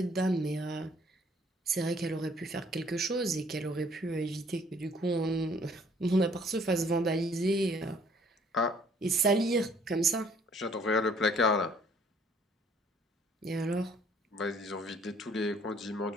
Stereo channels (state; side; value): normal; both; correlation 0.59